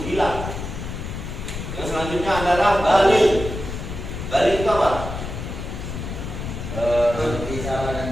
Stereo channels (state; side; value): noise; left; rumble, 7 dB below the sound